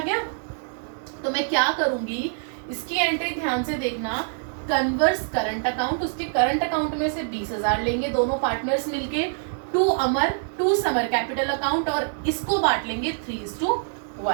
तो मैं क्या करूंगी, इसकी एंट्री ध्यान से देखना, कन्वर्स करंट अकाउंट, उसके करंट अकाउंट में से 20,000 लेंगे दोनों पार्टनर्स मिलके, to Amar to Samar capital account, और इसको बांट लेंगे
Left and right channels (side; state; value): left; silent; 62 dB below the other